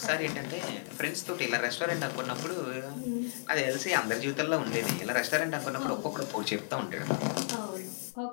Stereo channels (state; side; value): silent; right; digital silence